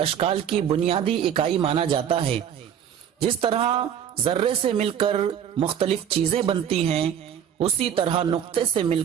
کی بنیادی اکائی مانا جاتا ہے۔ جس طرح ذرے سے مل کر مختلف چیزیں بنتی ہیں، اسی طرح نقطے سے مل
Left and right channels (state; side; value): quieter; left; 8.9 dB